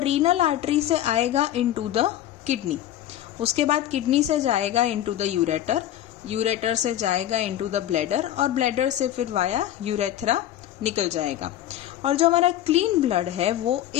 आर्टरी से आएगा इनटू द किडनी. उसके बाद किडनी से जाएगा इनटू द यूरेटर, यूरेटर से जाएगा इनटू द ब्लैडर और ब्लैडर से फिर वाया यूरेथ्रा निकल जाएगा. और जो हमारा क्लीन ब्लड है वो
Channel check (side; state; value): right; quieter; 12.3 dB